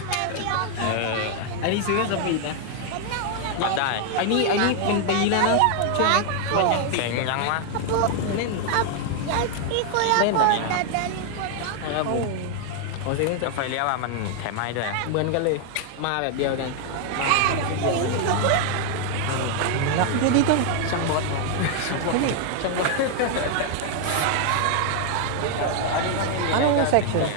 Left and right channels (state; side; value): different; both; correlation 0.00